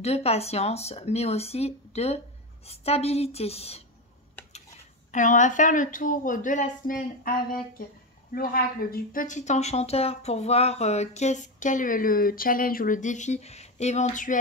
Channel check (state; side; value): normal; both; correlation 0.14